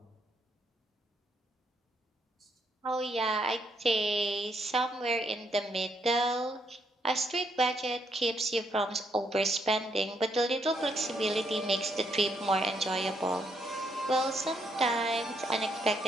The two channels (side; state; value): both; normal; correlation 0.75